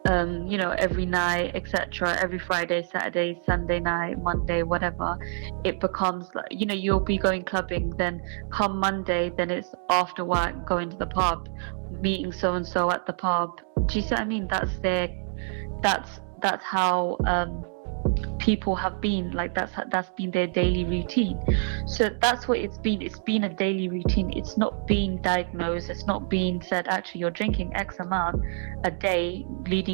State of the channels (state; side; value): silent; left; digital silence